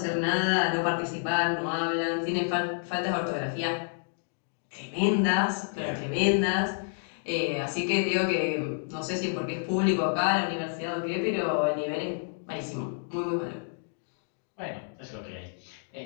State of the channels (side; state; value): right; silent; digital silence